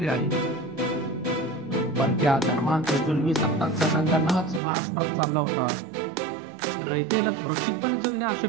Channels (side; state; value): left; drops out; at 4.6 s